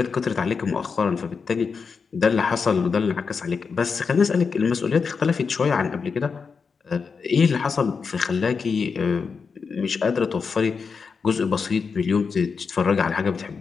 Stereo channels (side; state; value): right; quieter; 5.4 dB